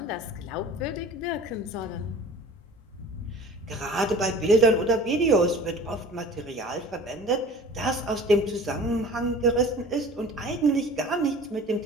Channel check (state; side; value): normal; both; correlation 0.42